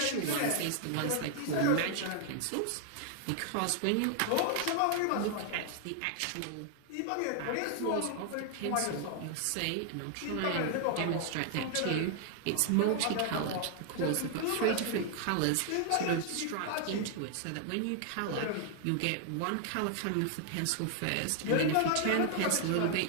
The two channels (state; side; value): different; both; correlation 0.00